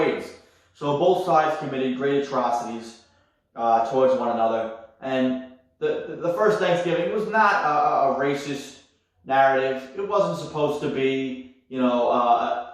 So both sides committed great atrocities towards one another. And the first Thanksgiving was not a racist narrative. It wasn't supposed to be,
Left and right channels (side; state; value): both; identical; correlation 1.00